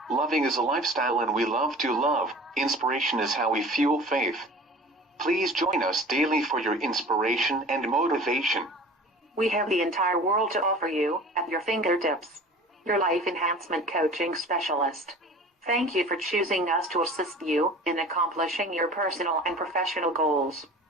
Loving is a lifestyle and we love to love. Inspiration is how we fuel faith. Please join us daily for your inspiration and motivation. We have the entire world to offer you at your fingertips. Your life enhancement coaching specialist. Thank you for choosing us to assist you in accomplishing your personal and professional goals.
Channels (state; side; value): normal; both; correlation 0.42